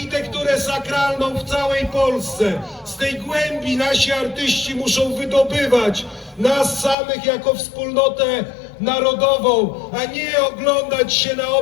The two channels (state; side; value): drops out; right; at 7.0 s